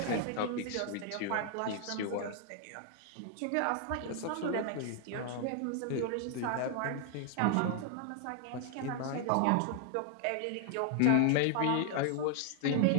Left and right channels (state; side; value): different; both; correlation 0.00